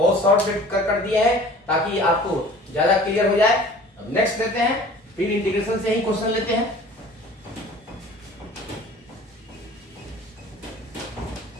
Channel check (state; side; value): normal; both; correlation 0.47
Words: शॉर्ट कर दिया है ताकि आपको ज्यादा क्लियर हो जाए। अब नेक्स्ट लेते हैं, फिर इंटीग्रेशन से ही क्वेश्चन लेते हैं।